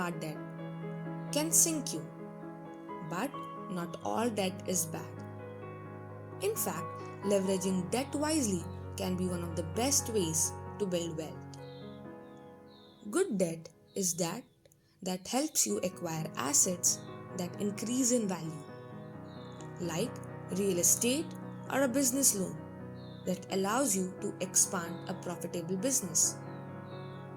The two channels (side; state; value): both; identical; correlation 1.00